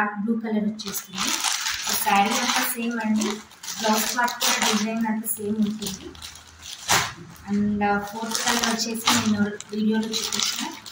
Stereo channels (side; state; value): both; identical; correlation 1.00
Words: బ్లూ కలర్ వచ్చేస్తుంది. శారీ అంతా సేమ్ అండి. బ్లౌజ్ పార్ట్ కూడా డిజైన్ అంతా సేమ్ ఉంటుంది. అండ్ ఫోర్త్ కలర్ వచ్చేసి నేను వీడియోలో చూపించిన